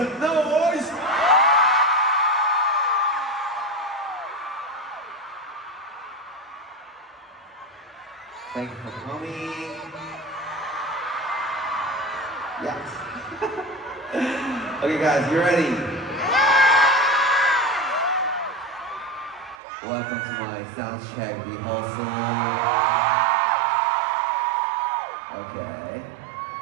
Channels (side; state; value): left; drops out; at 19.6 s